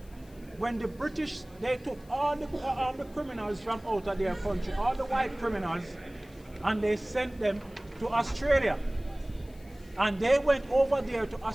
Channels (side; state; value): left; noise; hiss, 27 dB below the sound